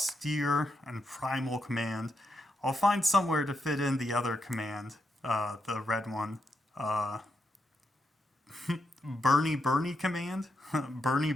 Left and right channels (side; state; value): both; normal; correlation 0.83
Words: and Primal Command. I'll find somewhere to fit in the other command, the red one. Bernie command?